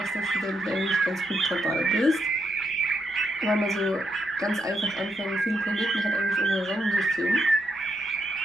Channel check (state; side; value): normal; both; correlation 0.80